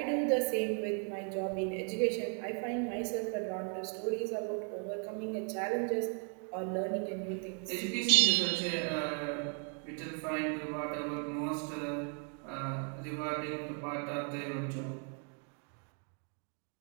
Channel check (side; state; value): left; quieter; 39.5 dB